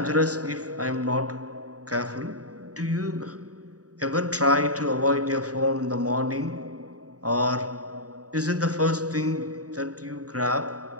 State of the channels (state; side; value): late; left; 0.67 ms